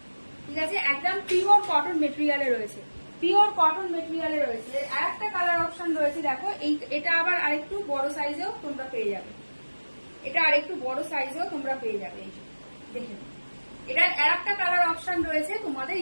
ঠিক আছে। একদম পিওর কটন মেটেরিয়ালে রয়েছে, পিওর কটন মেটেরিয়ালে রয়েছে। আর একটা কালার অপশন রয়েছে দেখো, এটা আবার আরেকটু বড় সাইজেও তোমরা পেয়ে যাবে, এটা আরেকটু বড় সাইজেও তোমরা পেয়ে যাবে। এই যে দেখে এটার আর একটা কালার অপশন রয়েছে তোমাদের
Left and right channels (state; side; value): inverted; both; correlation -1.00